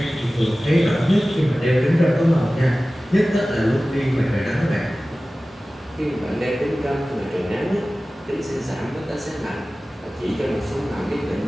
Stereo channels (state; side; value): normal; both; correlation 0.97